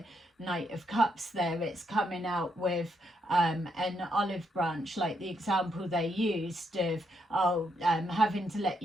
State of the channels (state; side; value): normal; both; correlation 0.77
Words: Knight of Cups there, it's coming out with an olive branch, like the example they used of having to let